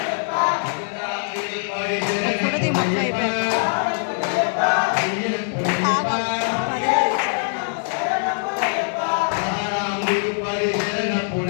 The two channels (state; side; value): silent; right; digital silence